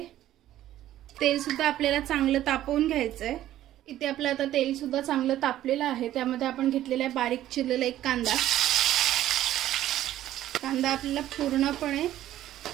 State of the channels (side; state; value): left; quieter; 13.2 dB